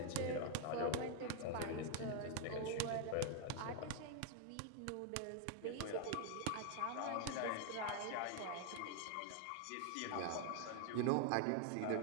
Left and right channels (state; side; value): different; both; correlation 0.00